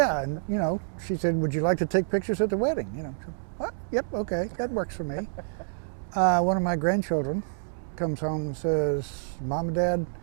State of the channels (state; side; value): silent; left; digital silence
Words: and you know, she said, would you like to take pictures at the wedding? You know, so, what? Yep, okay, that works for me. One of my grandchildren comes home and says, Mom and Dad,